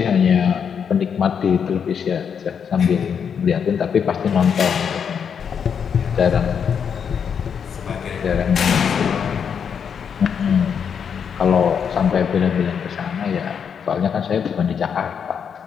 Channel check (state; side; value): quieter; right; 7.2 dB